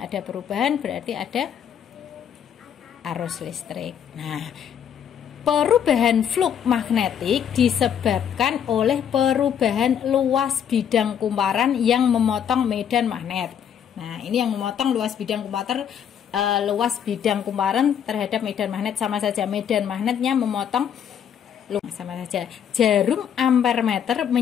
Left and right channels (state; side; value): quieter; right; 8.7 dB